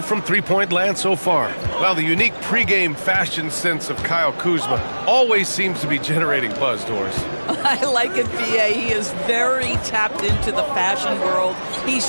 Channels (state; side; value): inverted; both; correlation -1.00